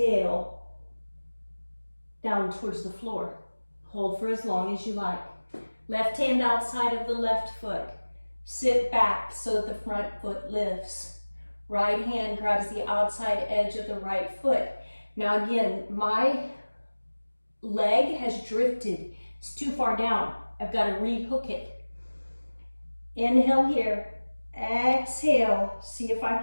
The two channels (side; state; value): both; inverted; correlation -1.00